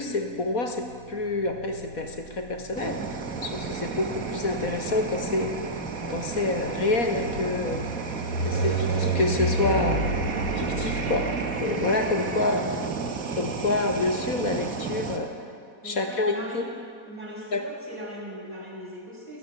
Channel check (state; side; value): late; right; 4.2 ms